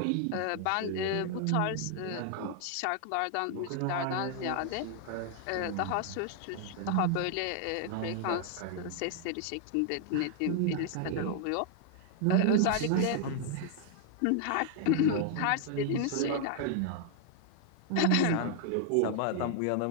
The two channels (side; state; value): both; different; correlation 0.00